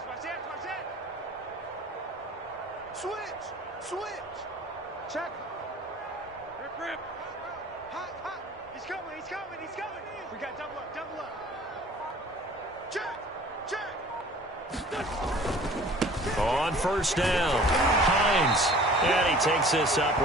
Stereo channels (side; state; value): both; normal; correlation 0.48